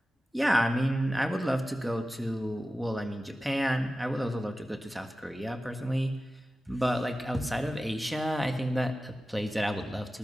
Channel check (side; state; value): both; normal; correlation 0.95